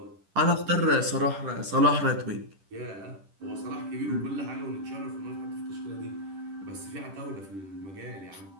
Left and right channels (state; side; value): late; left; 10 ms